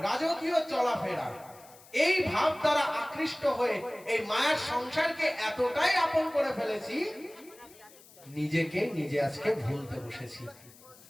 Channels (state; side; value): noise; left; hiss, 23 dB below the sound